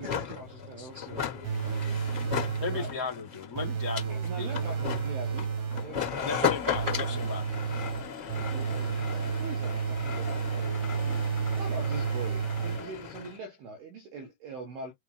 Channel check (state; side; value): late; left; 13 ms